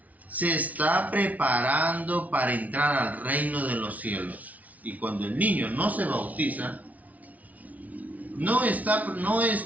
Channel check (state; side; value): late; left; 0.072 ms